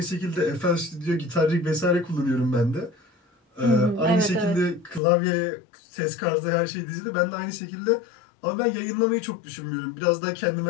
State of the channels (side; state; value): right; drops out; at 5.0 s